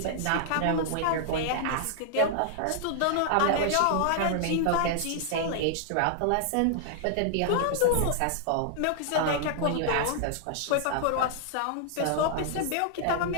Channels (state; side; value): different; both; correlation -0.01